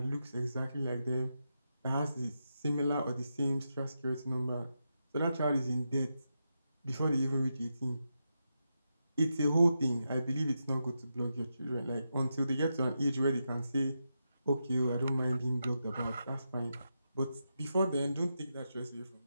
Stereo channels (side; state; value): both; inverted; correlation -0.87